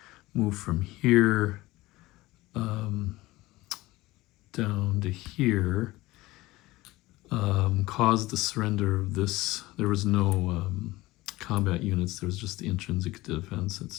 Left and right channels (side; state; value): right; quieter; 19.0 dB